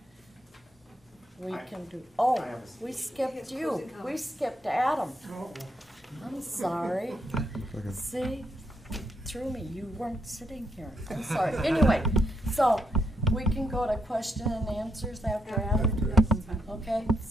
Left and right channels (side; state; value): both; normal; correlation 0.79